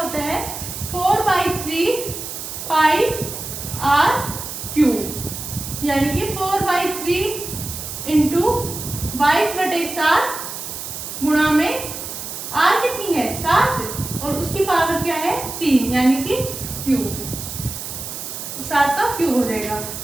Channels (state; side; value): noise; right; hiss, 8 dB below the sound